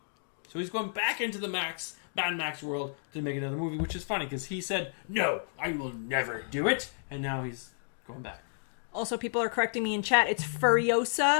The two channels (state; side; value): silent; right; digital silence